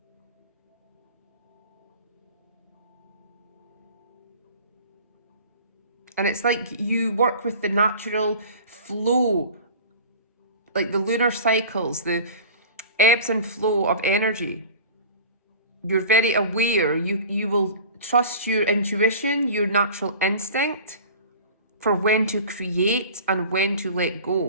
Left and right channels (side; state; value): both; inverted; correlation -0.40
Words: And it's like you work with the natural flow, like the lunar cycles, the ebbs and flow of energy. You're very aware. You will trust your intuition, your natural instinct for when to create and when to let